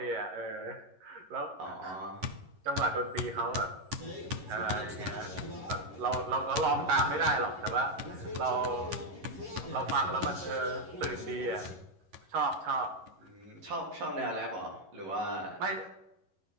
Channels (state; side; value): late; left; 11 ms